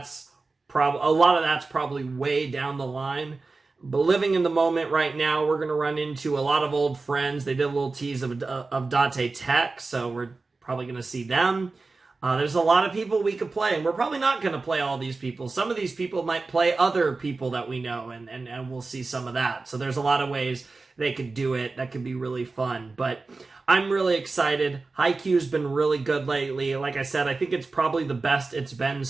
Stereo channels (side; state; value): left; quieter; 3.8 dB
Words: a lot of that's probably way down the line. But living in the moment right now, we're going to run into a lot of old friends. They did a little tease of Date Tech, so we're probably going to see them. There's a lot of people we could play, and we're probably not going to play all these people. Some of these people might play other people that we know, and we'll see some of that. So there's a lot of ways they could do it. That could be really fun. But I'm really excited. Haikyuu's been really good lately. Like I said, I think it's probably the best it's been